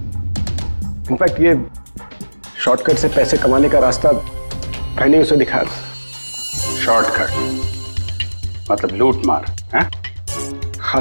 इनफैक्ट ये शॉर्टकट से पैसे कमाने का रास्ता मैंने उसे दिखाया। शॉर्टकट मतलब लूट मार है? हाँ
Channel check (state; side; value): inverted; both; correlation -1.00